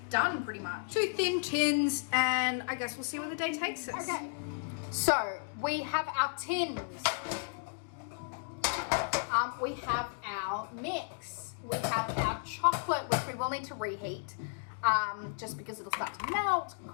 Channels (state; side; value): silent; right; digital silence